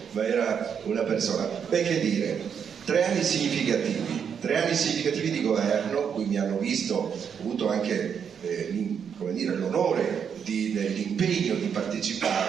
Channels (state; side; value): quieter; left; 7.4 dB